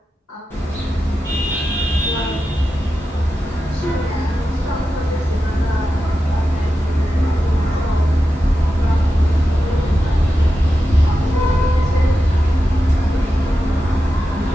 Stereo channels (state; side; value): normal; both; correlation 0.90